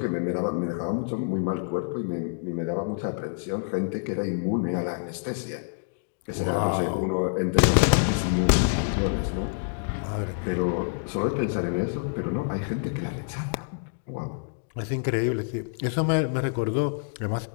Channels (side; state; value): right; silent; digital silence